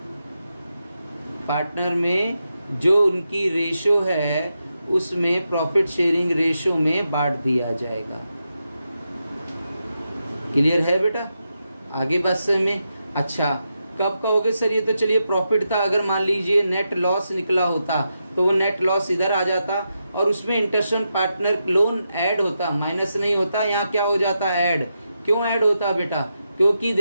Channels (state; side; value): inverted; both; correlation -0.86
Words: पार्टनर में जो उनकी रेशो है उसमें प्रॉफिट शेयरिंग रेशो में बांट दिया जाएगा। क्लियर है बेटा? आगे बात समझ में? अच्छा, कब कहोगे सर ये तो चलिए प्रॉफिट था, अगर मान लीजिए नेट लॉस निकला होता तो वो नेट लॉस इधर आ जाता और उसमें interest on partner loan add होता, माइनस नहीं होता, यहाँ क्या हो जाता? ऐड। क्यों ऐड होता बेटा? क्योंकि